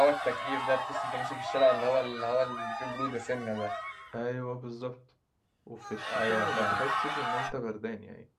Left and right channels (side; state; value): both; identical; correlation 1.00